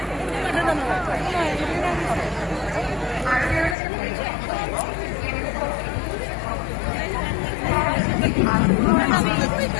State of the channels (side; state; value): right; drops out; at 3.8 s